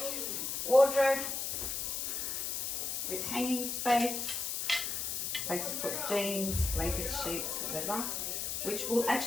wardrobe with hanging space, place to put jeans, blankets, sheets, whatever, which will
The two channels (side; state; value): left; noise; hiss, 2 dB below the sound